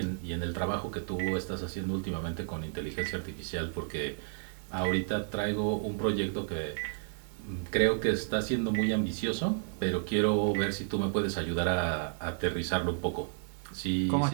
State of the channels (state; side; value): silent; left; 56 dB below the other